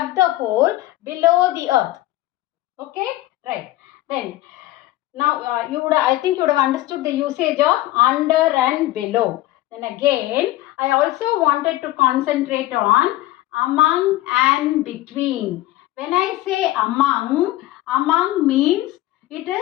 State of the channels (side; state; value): right; quieter; 16.3 dB